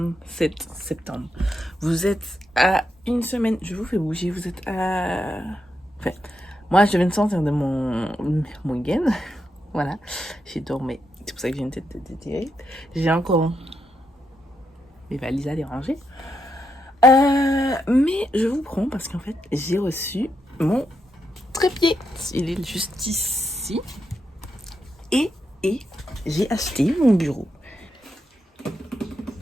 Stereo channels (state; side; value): normal; both; correlation 0.83